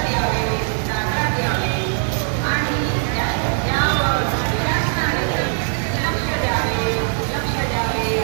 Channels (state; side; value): silent; left; 62 dB below the other